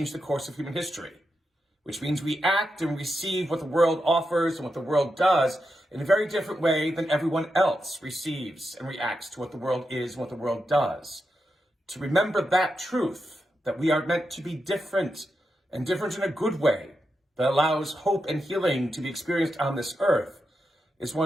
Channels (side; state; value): both; normal; correlation 0.87